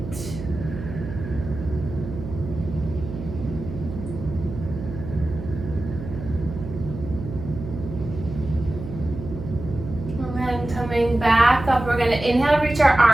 Coming back up, we're going to inhale, reach our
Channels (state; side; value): noise; right; hum, 9 dB below the sound